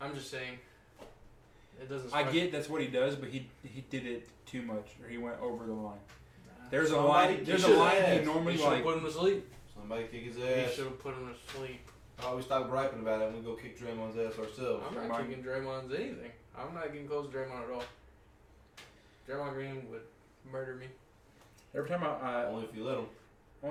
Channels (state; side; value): identical; both; correlation 1.00